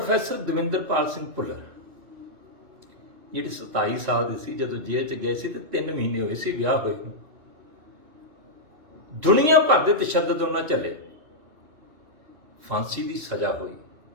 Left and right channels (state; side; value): late; left; 2.6 ms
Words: ਦਵਿੰਦਰਪਾਲ ਸਿੰਘ ਭੁੱਲਰ ਜਿਹੜੇ 27 ਸਾਲ ਦੇ ਸੀ ਜਦੋਂ ਜੇਲ੍ਹ 'ਚ ਗਏ ਸੀ ਤੇ 3 ਮਹੀਨੇ ਹੋਏ ਸੀ ਵਿਆਹ ਹੋਏ ਨੂੰ। ਦੁਨੀਆ ਭਰ ਦੇ ਤਸ਼ੱਦਦ ਉਹਨਾਂ ਝੱਲੇ, ਫਾਂਸੀ ਦੀ ਸਜ਼ਾ ਹੋਈ,